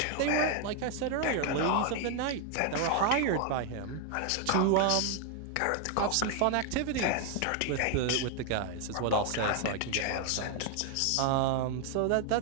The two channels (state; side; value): different; both; correlation 0.01